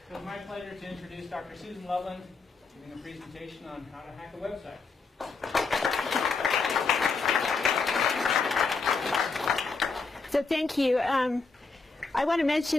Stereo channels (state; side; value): quieter; right; 4.3 dB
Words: So it's my pleasure to introduce Dr. Susan Loveland, giving a presentation on how to hack a website. So thank you. I want to